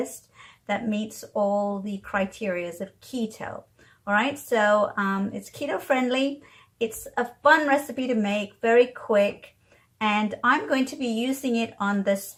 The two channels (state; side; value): identical; both; correlation 1.00